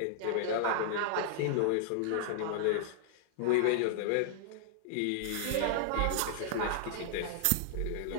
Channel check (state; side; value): different; both; correlation -0.01